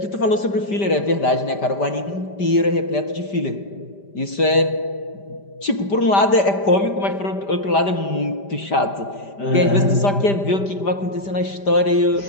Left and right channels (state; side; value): late; right; 5.1 ms